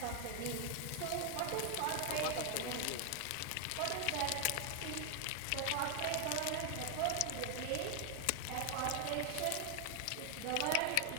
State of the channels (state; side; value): different; both; correlation 0.00